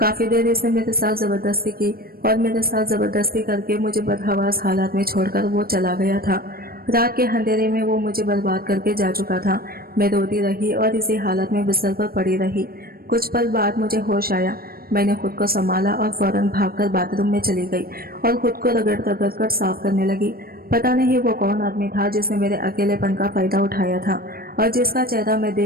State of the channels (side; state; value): left; late; 0.44 ms